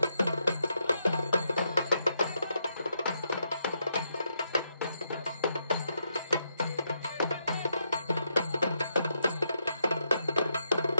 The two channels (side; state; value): both; inverted; correlation -0.80